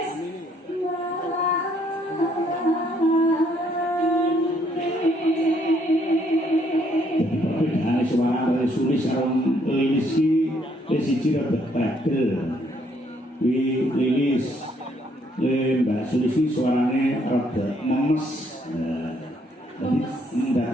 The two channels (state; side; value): normal; both; correlation 0.69